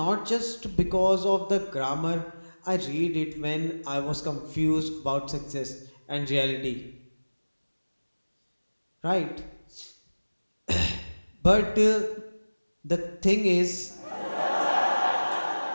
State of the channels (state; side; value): inverted; both; correlation -1.00